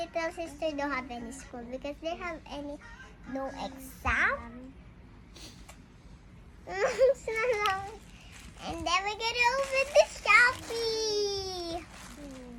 sister don't have any school because they have no exam. And then we're gonna open the Shopee.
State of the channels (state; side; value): identical; both; correlation 1.00